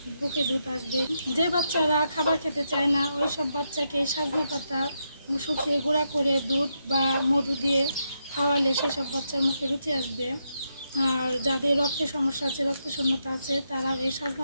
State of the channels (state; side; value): inverted; both; correlation -0.82